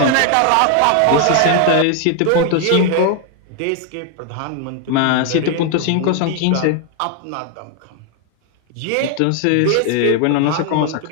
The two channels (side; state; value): both; different; correlation 0.00